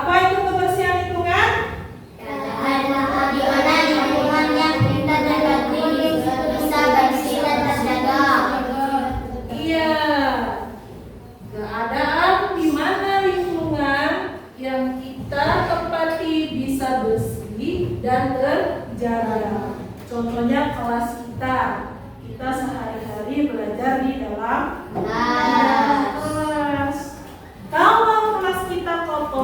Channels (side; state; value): both; identical; correlation 1.00